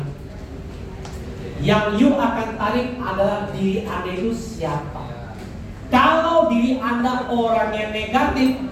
Yang you akan tarik adalah diri Anda itu siapa. Kalau diri Anda orang yang negatif,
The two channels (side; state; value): both; identical; correlation 1.00